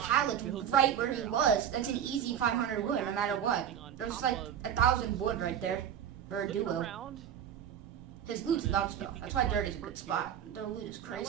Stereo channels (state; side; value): quieter; left; 9.2 dB